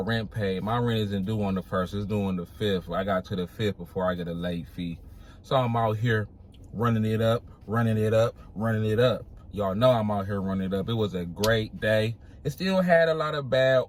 paid. My rent isn't due on the 1st, it's due on the 5th. I got to the 5th before I get a late fee. So I'm out here running it up. Y'all know I'm out here running it up. It was a great day. It still had a lot of bad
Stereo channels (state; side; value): identical; both; correlation 1.00